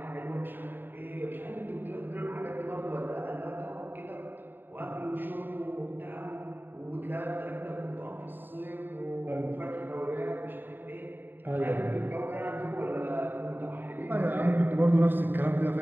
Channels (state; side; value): late; left; 0.094 ms